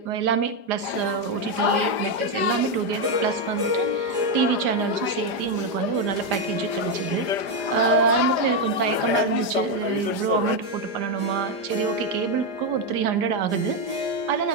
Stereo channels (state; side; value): late; left; 5.0 ms